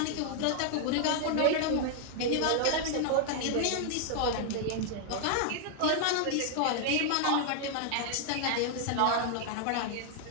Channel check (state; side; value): different; both; correlation 0.00